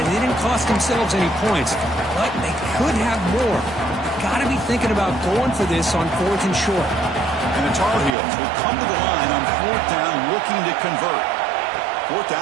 they didn't cost themselves any points. But they could have more. Got to be thinking about going for this on 4th and short. And And the Tar Heels will come to the line on 4th down looking to convert. 4th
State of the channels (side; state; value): left; drops out; at 8.2 s